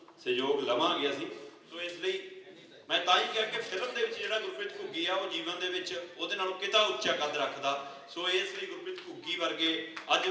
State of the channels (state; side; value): identical; both; correlation 1.00